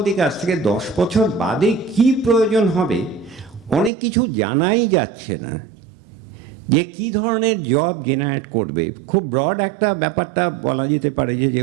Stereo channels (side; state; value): left; drops out; at 3.9 s